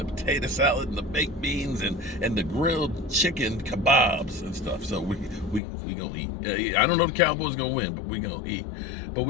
potato salad and the baked beans and the grilled chicken kebabs and stuff. So we gonna eat. I don't know if the Cowboys gonna win, but we gonna eat. But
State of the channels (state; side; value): drops out; right; at 5.6 s